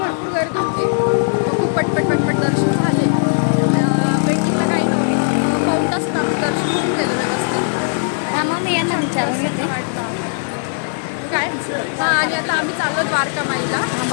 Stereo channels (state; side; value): silent; right; 56 dB below the other